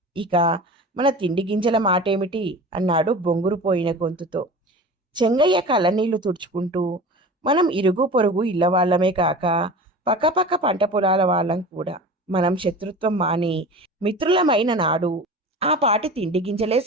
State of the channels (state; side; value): normal; both; correlation 0.35